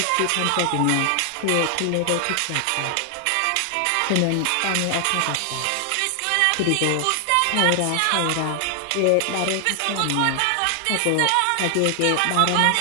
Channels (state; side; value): different; both; correlation 0.00